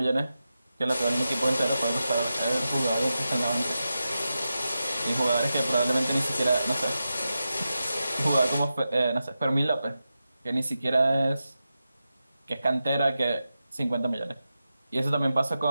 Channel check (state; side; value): inverted; both; correlation -0.91